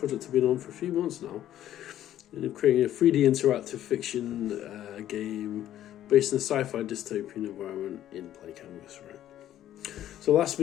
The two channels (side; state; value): right; quieter; 12.2 dB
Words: I've been on for a few months now. And I'm creating a 3D interactive fiction game based in a sci-fi dystopian environment in PlayCanvas, right? So last